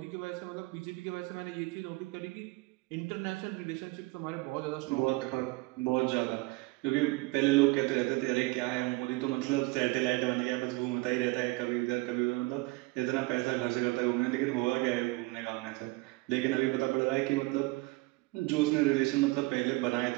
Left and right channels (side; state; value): left; quieter; 22.9 dB